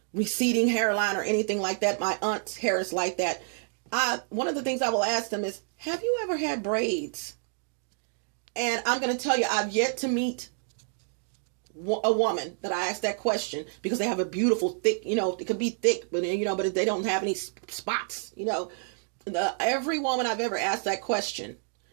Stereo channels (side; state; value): left; silent; 59 dB below the other